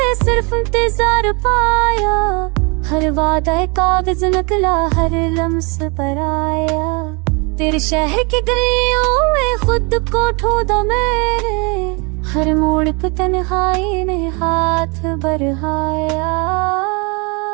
सिर्फ इंतजार पाया, हर वादा कागज नकला हर लम्स पर आया। तेरे शहर की गलियों में खुद को ढूंढा मेरे, हर मोड़ पे तन्हाई ने हाथ बढ़ाया।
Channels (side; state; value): left; quieter; 30.4 dB